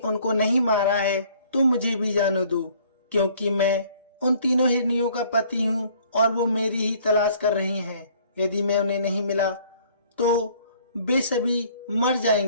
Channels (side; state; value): both; inverted; correlation -0.57